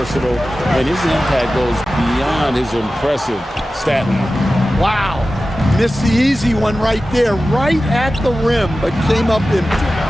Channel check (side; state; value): both; normal; correlation 0.95